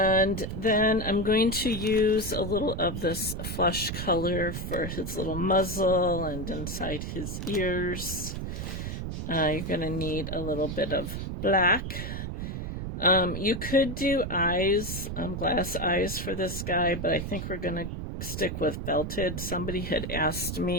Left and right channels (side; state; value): right; noise; rumble, 5 dB below the sound